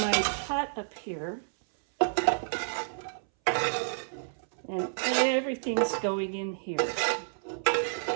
pot up here, and everything's going in here.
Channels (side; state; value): left; silent; 58 dB below the other